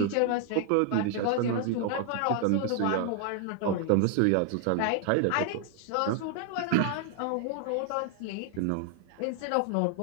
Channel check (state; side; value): different; both; correlation 0.00